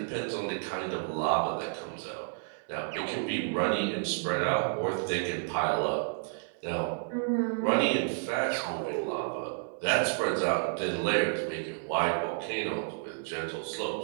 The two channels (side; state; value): left; silent; 57 dB below the other